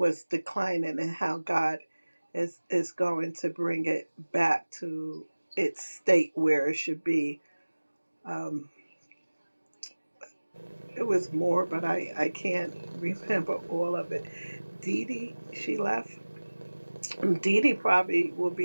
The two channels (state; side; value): inverted; both; correlation -1.00